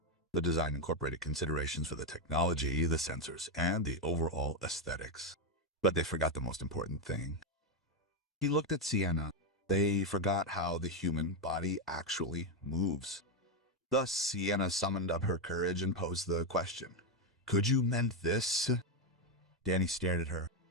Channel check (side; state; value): both; normal; correlation 0.06